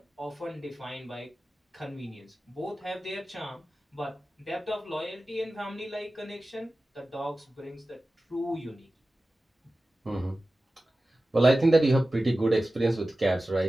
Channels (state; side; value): normal; both; correlation 0.95